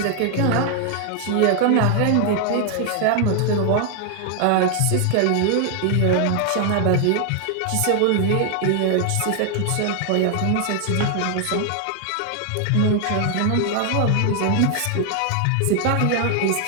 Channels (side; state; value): both; different; correlation 0.00